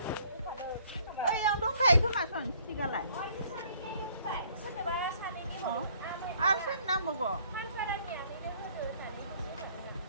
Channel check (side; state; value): both; inverted; correlation -0.61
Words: ओइ आं दंखायो खोमा सन सिगालाय आरो सोरनि नांबावगौ